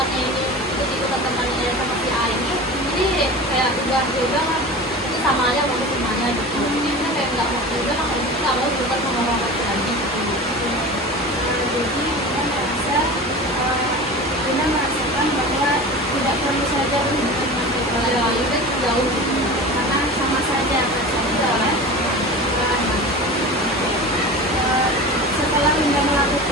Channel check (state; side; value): normal; both; correlation 0.33